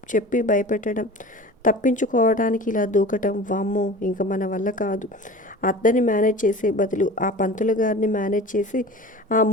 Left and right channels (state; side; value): normal; both; correlation 0.37